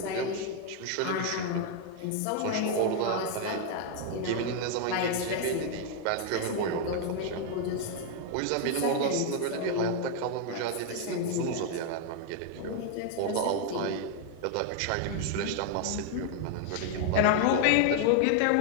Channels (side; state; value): both; different; correlation 0.00